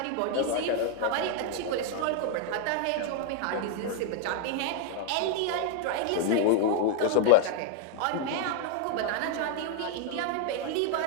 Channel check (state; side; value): different; both; correlation 0.00